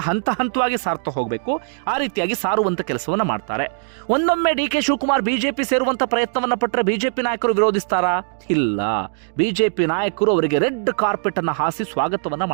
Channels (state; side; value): silent; left; 65 dB below the other